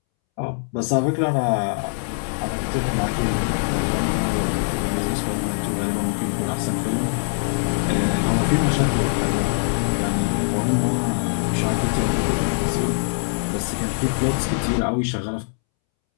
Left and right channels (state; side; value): silent; right; 64 dB below the other